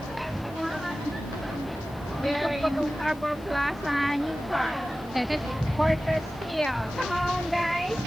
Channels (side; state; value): left; noise; hiss, 25 dB below the sound